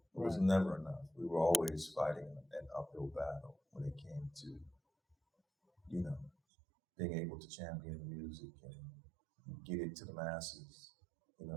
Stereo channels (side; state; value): left; drops out; at 6.3 s